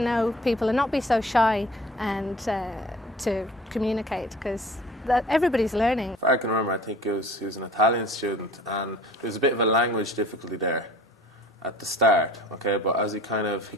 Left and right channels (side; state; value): both; normal; correlation 0.46